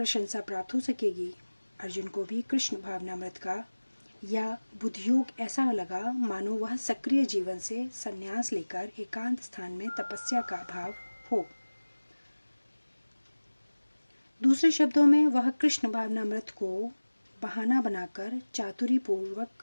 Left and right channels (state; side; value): inverted; both; correlation -1.00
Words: प्राप्त हो सकेगी। अर्जुन को भी कृष्ण भावनामृत का या बुद्धियोग ऐसा लगा मानो वह सक्रिय जीवन से संन्यास लेकर एकांत स्थान में तपस्या का भाव हो। दूसरे शब्दों में वह कृष्ण भावनामृत को बहाना बनाकर चातुरी पूर्वक